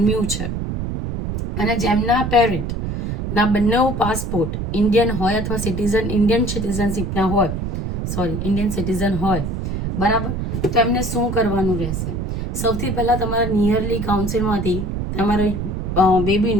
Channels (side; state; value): right; noise; rumble, 3 dB below the sound